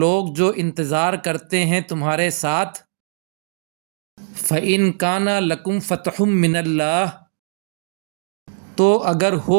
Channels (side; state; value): left; silent; digital silence